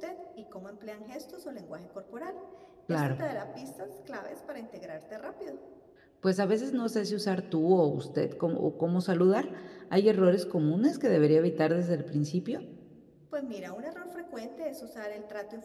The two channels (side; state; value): both; identical; correlation 1.00